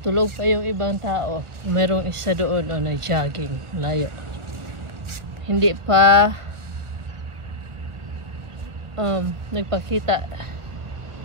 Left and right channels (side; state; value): left; late; 1.3 ms